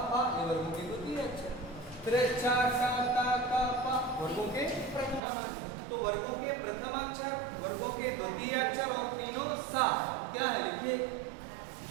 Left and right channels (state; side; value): drops out; left; at 5.2 s